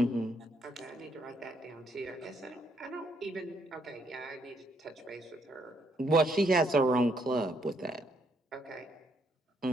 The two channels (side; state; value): both; normal; correlation 0.73